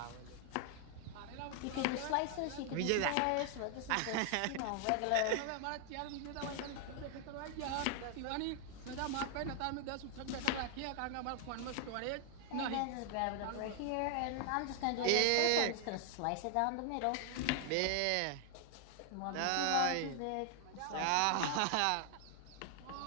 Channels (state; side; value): different; both; correlation 0.00